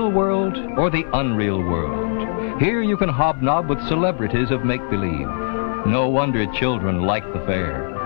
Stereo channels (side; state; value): right; silent; digital silence